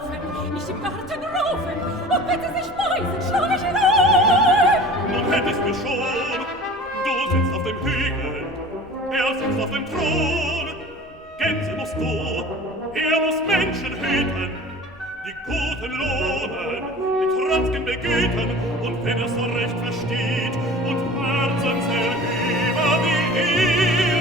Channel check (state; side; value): normal; both; correlation 0.41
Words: nicht im Garten raufen, und bitte sich Mäuse, schau ich hinein! Nun hättest du schon, du sitzt auf dem Hügel, er sitzt auf dem Thron. Gänse musst du, er muss Menschen hüten, die Guten lohnen, die Transken begüten, und wenn er's recht versteht und Herzen sehr über die